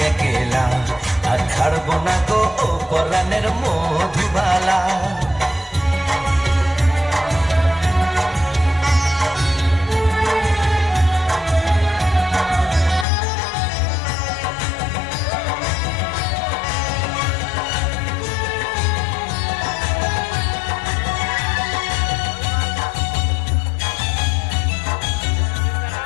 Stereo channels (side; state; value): right; drops out; at 13.1 s